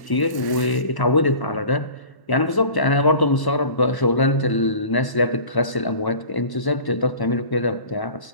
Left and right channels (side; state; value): right; late; 1.0 ms